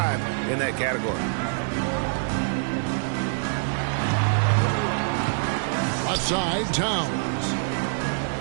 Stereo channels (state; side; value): silent; left; digital silence